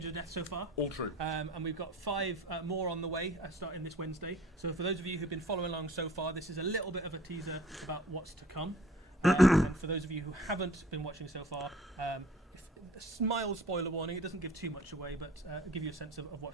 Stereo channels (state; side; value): normal; both; correlation 0.48